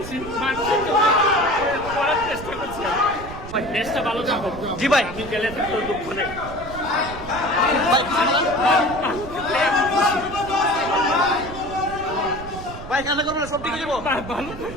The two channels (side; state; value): right; noise; rumble, 12 dB below the sound